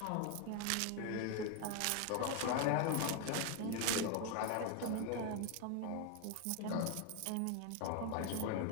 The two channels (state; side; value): different; both; correlation 0.01